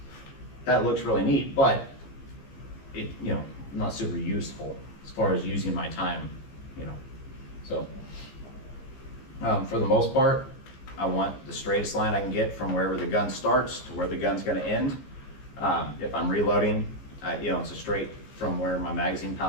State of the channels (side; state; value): right; late; 15 ms